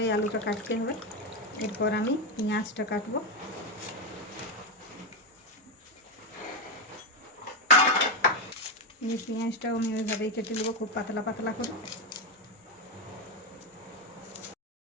আলুটা কাটতে হবে। এরপর আমি পেঁয়াজটা কাটবো। এই পেঁয়াজটাও আমি ওইভাবেই কেটে নেবো, খুব পাতলা পাতলা করে।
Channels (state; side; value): normal; both; correlation 0.09